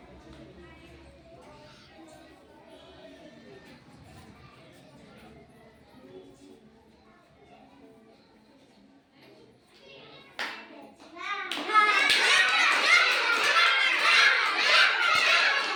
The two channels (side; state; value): both; identical; correlation 1.00